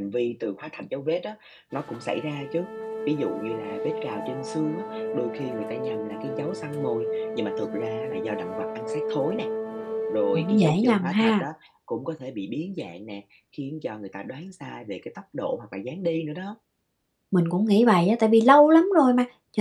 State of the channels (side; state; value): both; identical; correlation 1.00